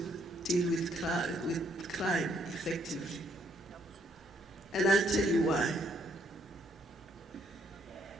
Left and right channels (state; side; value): normal; both; correlation 0.69